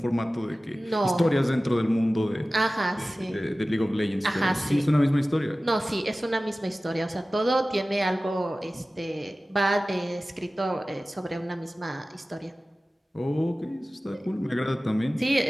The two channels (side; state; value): both; normal; correlation 0.96